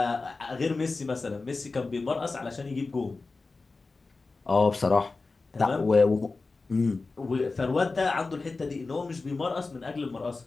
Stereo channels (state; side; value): quieter; right; 3.8 dB